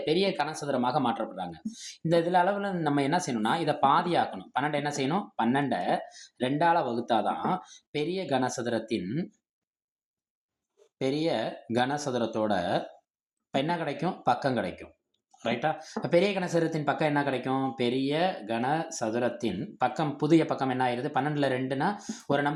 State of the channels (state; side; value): identical; both; correlation 1.00